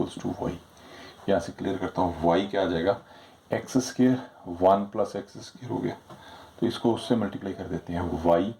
टू वाई, यहाँ से क्लियर करता हूँ। वाई क्या आ जाएगा, X square 1 plus X square हो गया, तो इसको उससे मल्टीप्लाई कर देते हैं, Y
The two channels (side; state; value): both; identical; correlation 1.00